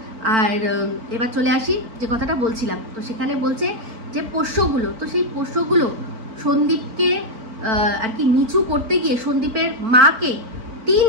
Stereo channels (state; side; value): late; left; 4.4 ms